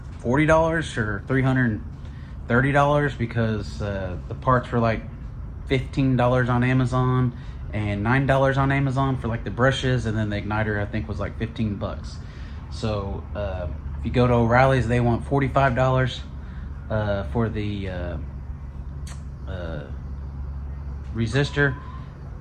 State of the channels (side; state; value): both; identical; correlation 1.00